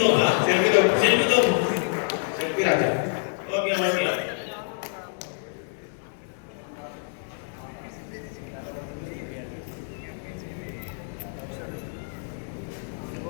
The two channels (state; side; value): silent; right; 57 dB below the other